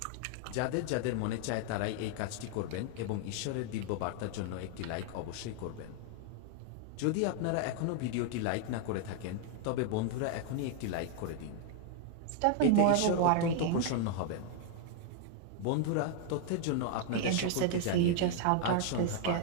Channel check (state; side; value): different; both; correlation 0.00